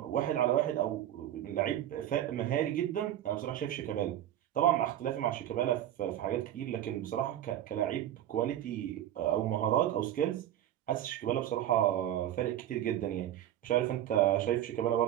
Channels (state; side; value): quieter; left; 12.0 dB